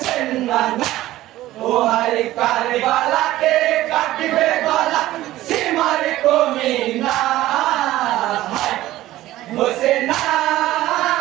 নানা ও হায় কারবালাতে কাটবে গলা সীমার কমিনা হোসেনা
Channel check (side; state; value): left; quieter; 15.6 dB